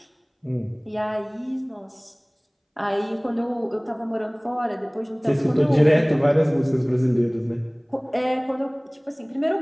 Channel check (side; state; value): both; identical; correlation 1.00